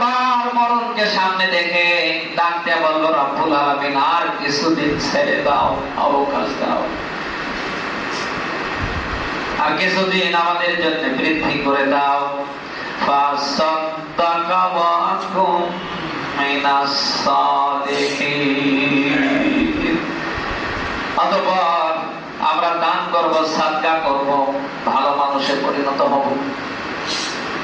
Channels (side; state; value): both; identical; correlation 1.00